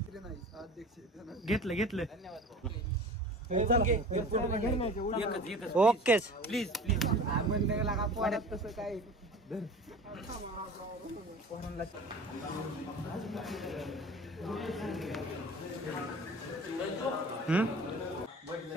घेतलं ओके प्लीज म्हणलं तसं काय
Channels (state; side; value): normal; both; correlation 0.39